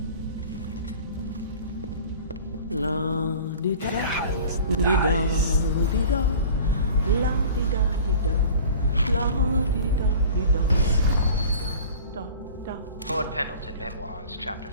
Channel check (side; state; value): both; inverted; correlation -0.42